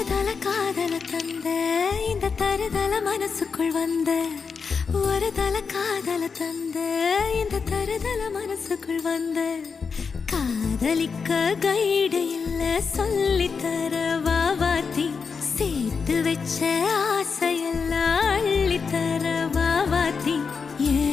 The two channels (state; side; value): quieter; right; 5.5 dB